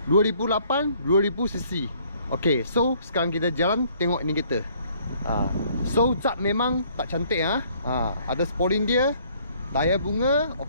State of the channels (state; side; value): inverted; both; correlation -0.62